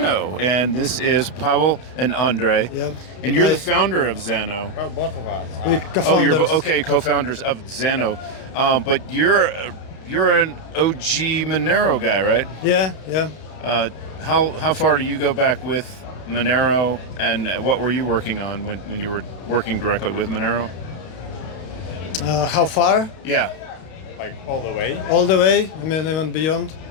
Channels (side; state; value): right; late; 32 ms